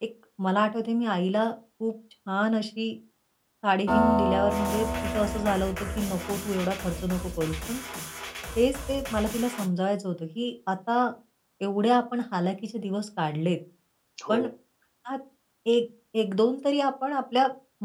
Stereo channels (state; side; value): identical; both; correlation 1.00